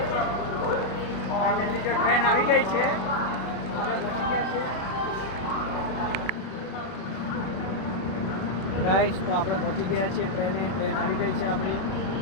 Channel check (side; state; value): right; late; 32 ms